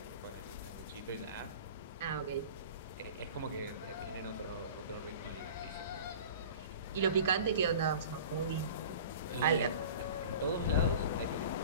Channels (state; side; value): inverted; both; correlation -0.40